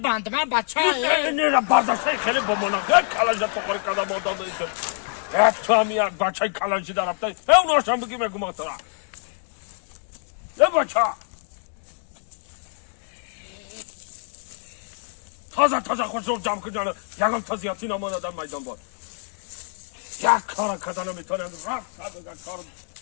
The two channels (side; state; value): right; silent; 62 dB below the other